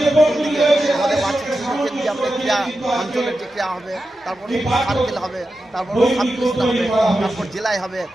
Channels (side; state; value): both; normal; correlation 0.91